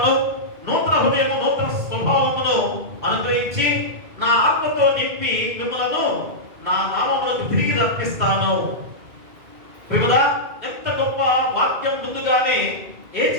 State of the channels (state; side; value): late; left; 2.4 ms